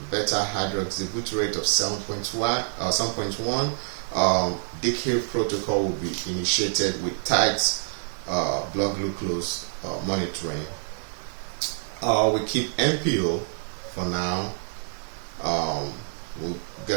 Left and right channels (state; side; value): silent; left; digital silence